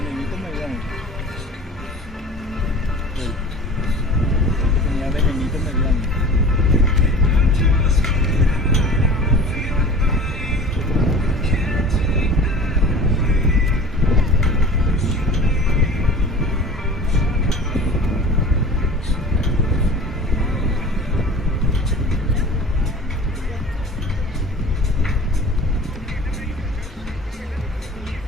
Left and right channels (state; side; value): normal; both; correlation 0.40